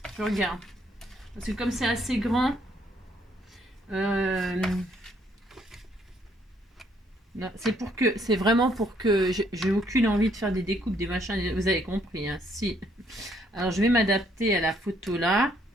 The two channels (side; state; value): both; normal; correlation 0.68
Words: Je regarde. Parce que comme c'est assez grand. C'est vraiment pour que j'ai aucune envie de faire des découpes, des machins, vous avez compris, hein, si. Alors je vais m'adapter à la photo là.